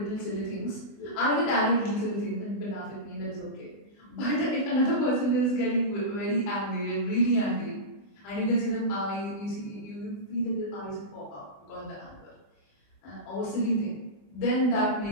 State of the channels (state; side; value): late; right; 20 ms